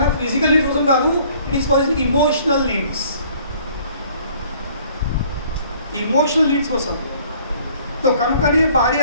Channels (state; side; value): inverted; both; correlation -0.57